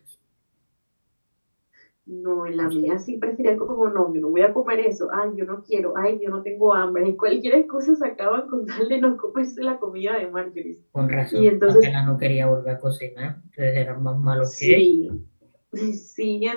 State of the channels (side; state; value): both; inverted; correlation -1.00